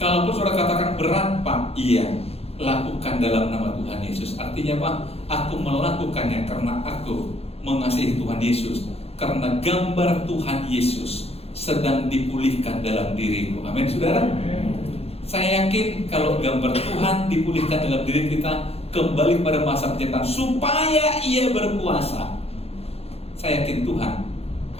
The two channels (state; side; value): late; right; 0.29 ms